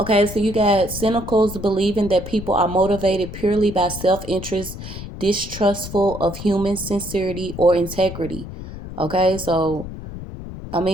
so you got cynicals believing that people are motivated purely by self-interest, distrustful of human sincerity or integrity. Okay, so I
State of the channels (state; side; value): noise; left; rumble, 10 dB below the sound